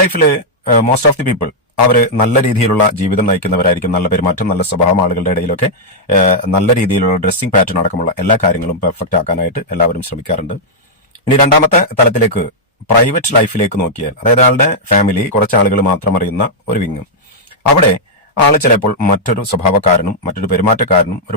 ലൈഫിൽ മോസ്റ്റ് ഓഫ് ദി പീപ്പിൾ അവര് നല്ല രീതിയിലുള്ള ജീവിതം നയിക്കുന്നവരായിരിക്കും. നല്ല പെരുമാറ്റം, നല്ല സ്വഭാവം, ആളുകളുടെ ഇടയിലൊക്കെ നല്ല രീതിയിലുള്ള ഡ്രസ്സിംഗ് പാറ്റേൺ അടക്കമുള്ള എല്ലാ കാര്യങ്ങളും പെർഫെക്റ്റ് ആക്കാനായിട്ട് എല്ലാവരും ശ്രമിക്കാറുണ്ട്. ഇനി രണ്ടാമത്തെ തലത്തിലേക്ക്, പ്രൈവറ്റ് ലൈഫിലേക്ക് നോക്കിയാൽ, അതായത് ആളുടെ ഫാമിലി, കുറച്ച് ആളുകൾ മാത്രം അറിയുന്ന ഒരു വിങ്, അവിടെ ആള് ചിലപ്പോൾ മറ്റൊരു സ്വഭാവക്കാരനും മറ്റൊരു പെരുമാറ്റക്കാരനും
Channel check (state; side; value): normal; both; correlation -0.06